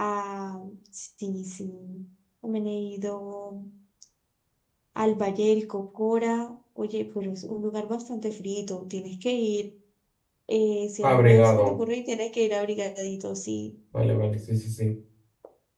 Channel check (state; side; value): identical; both; correlation 1.00